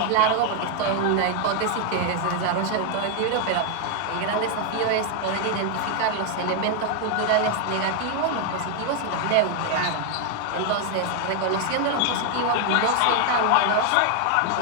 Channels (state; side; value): different; both; correlation 0.00